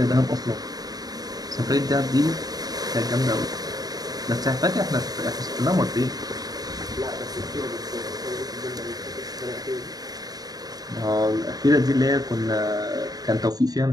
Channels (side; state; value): left; late; 0.18 ms